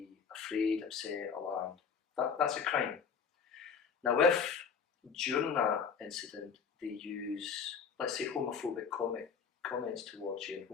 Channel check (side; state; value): right; quieter; 6.2 dB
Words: afraid, upset, alarmed. That's a crime. Now, if during that incident they use, let's say, homophobic comments towards you,